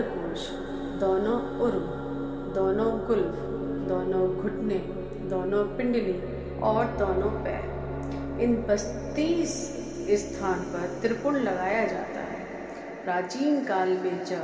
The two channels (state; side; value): identical; both; correlation 1.00